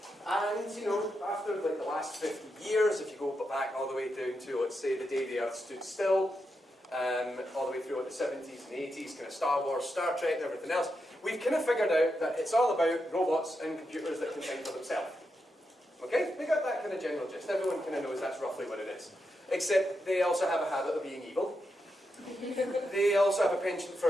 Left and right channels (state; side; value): normal; both; correlation 0.85